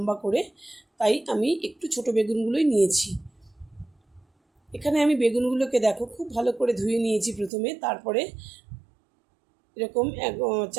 করে, তাই আমি একটু ছোটো বেগুনগুলোই নিয়েছি। এখানে আমি বেগুনগুলোকে দেখো খুব ভালো করে ধুয়ে নিয়েছি প্রথমে, তারপরে এরকম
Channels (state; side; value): drops out; left; at 7.5 s